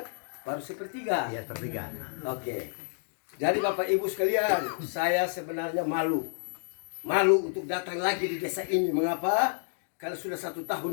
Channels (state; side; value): silent; right; digital silence